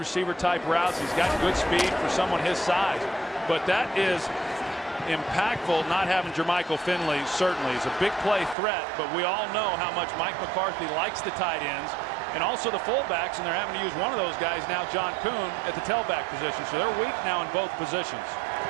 type routes. He's got good speed for someone his size. But that is impactful not having Jermichael Finley. Certainly, he's a big play threat, but we all know how much Mike McCarthy likes the tight ends and also the fullbacks, and they're having to use one of those guys now, John Kuhn, at the tailback position. So they're weak now in both positions.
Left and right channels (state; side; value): drops out; left; at 8.6 s